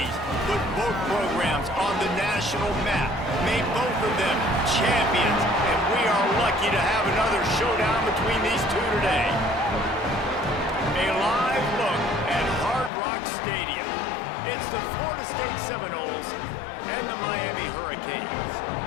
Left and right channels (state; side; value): drops out; right; at 12.9 s